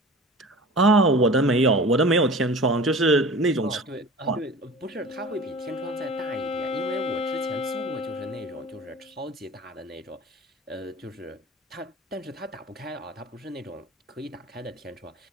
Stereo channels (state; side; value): normal; both; correlation 0.38